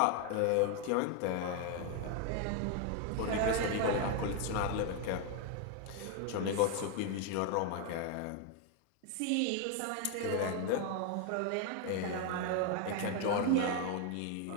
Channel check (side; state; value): both; different; correlation 0.01